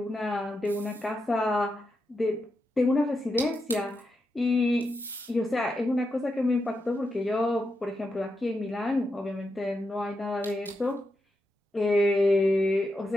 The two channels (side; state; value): both; normal; correlation 0.86